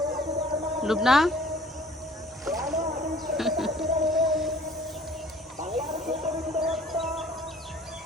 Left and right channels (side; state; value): both; normal; correlation 0.52